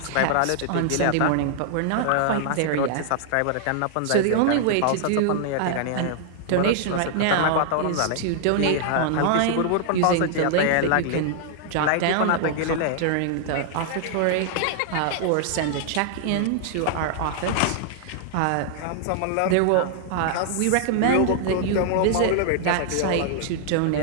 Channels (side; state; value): both; different; correlation -0.01